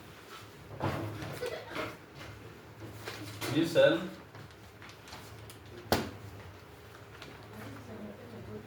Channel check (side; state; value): both; identical; correlation 1.00